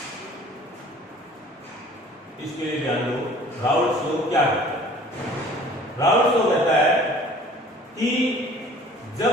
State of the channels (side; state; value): both; normal; correlation 0.49